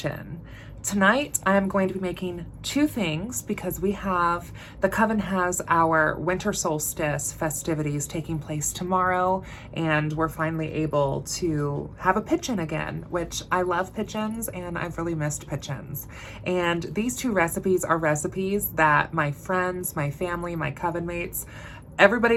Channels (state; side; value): identical; both; correlation 1.00